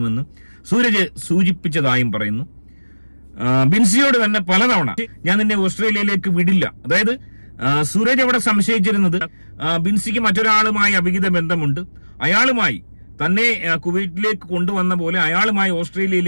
സൂരജ് സൂചിപ്പിച്ചതായും പറയുന്നു. ബിൻസിയോട് തന്നെ പലതവണ ഞാൻ നിന്നെ ഓസ്ട്രേലിയയിലേക്ക് വിടില്ല, അതായത് സൂരജ് അവിടെ സംശയിച്ചിരുന്നത് ബിൻസിക്ക് മറ്റൊരാളുമായി അവിഹിത ബന്ധമുണ്ട്, അയാളുമായി തന്നെ കുവൈറ്റിലേക്ക് കൊണ്ടുവന്ന പോലെ അയാളുമായി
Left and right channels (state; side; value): inverted; both; correlation -1.00